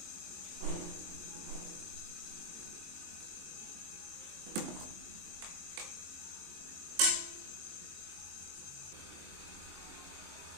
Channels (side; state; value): left; late; 23 ms